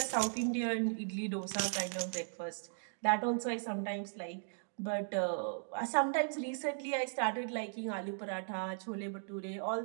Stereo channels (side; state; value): left; silent; digital silence